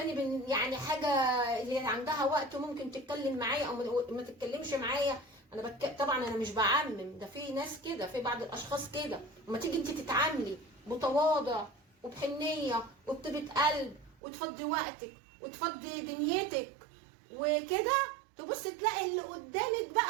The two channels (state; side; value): drops out; left; at 14.2 s